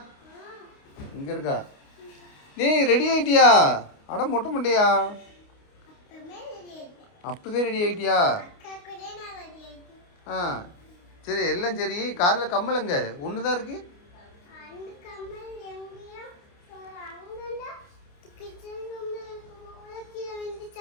இங்க இருக்கா நீ ரெடி ஆயிட்டியா அட மொட்டை மண்டையா அப்பவே ரெடி ஆயிட்டியா ஆ சரி எல்லாம் சரி காதில் கம்மலங்க ஒன்று தான் இருக்கு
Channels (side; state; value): right; late; 29 ms